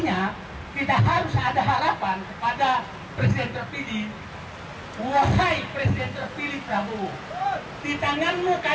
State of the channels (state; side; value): identical; both; correlation 1.00